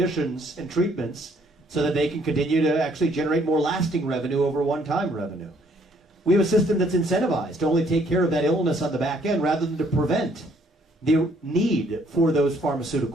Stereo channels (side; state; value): both; normal; correlation 0.65